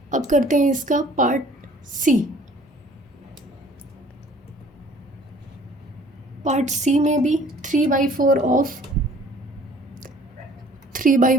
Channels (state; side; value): normal; both; correlation 0.54